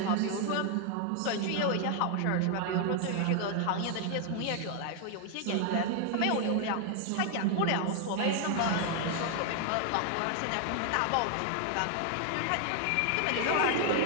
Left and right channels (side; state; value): both; different; correlation 0.00